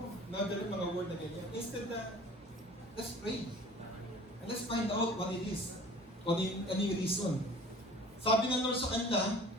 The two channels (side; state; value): both; normal; correlation 0.46